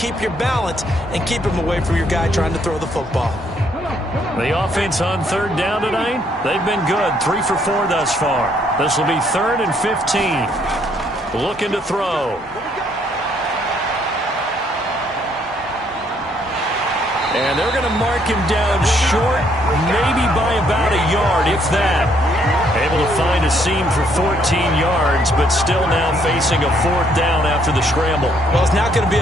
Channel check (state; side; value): normal; both; correlation 0.69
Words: your balance and keep him away from your guy trying to throw the football. The offense on third down tonight, they've been good. 3 for 4 thus far. This will be 3rd and 15. Looking to throw. And they're going to mark him down short, maybe by about a yard, if that. Able to find a seam for 14 yards, but still now facing a 4th down after the scramble. Well, it's not going to be